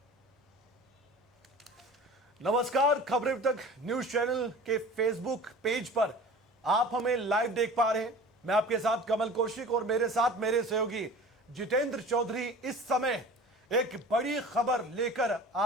नमस्कार, खबरें अब तक न्यूज चैनल के फेसबुक पेज पर आप हमें लाइव देख पा रहे हैं। मैं आपके साथ कमल कौशिक और मेरे साथ मेरे सहयोगी जितेंद्र चौधरी इस समय एक बड़ी खबर लेकर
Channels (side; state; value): both; normal; correlation 0.40